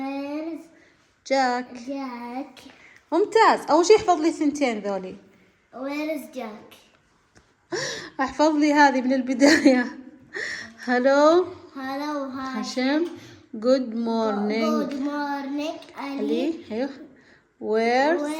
جاك. ممتاز. أول شي احفظ لي ثنتين ذولي. ويرز جاك. احفظ لي هذه من البداية. هلو هاشم. جود مورنينج علي. ايوه ويرز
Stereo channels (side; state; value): both; identical; correlation 1.00